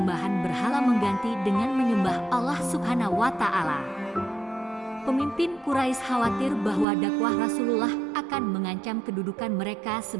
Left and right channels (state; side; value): drops out; left; at 6.9 s